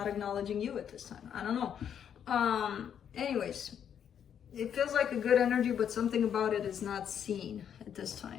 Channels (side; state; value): right; quieter; 8.6 dB